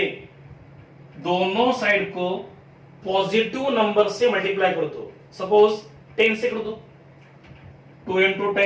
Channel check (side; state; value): both; identical; correlation 1.00